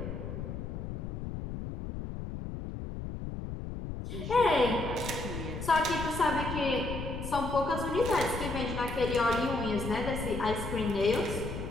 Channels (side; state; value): left; noise; rumble, 6 dB below the sound